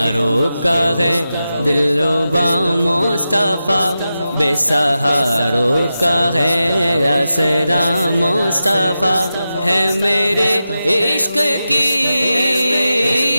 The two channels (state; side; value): inverted; both; correlation -0.91